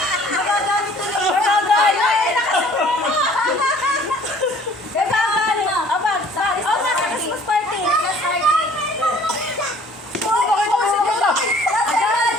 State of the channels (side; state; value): both; normal; correlation 0.54